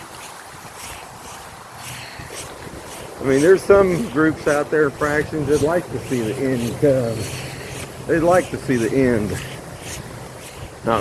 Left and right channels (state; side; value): identical; both; correlation 1.00